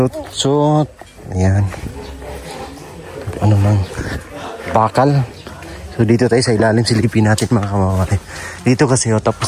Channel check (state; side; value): identical; both; correlation 1.00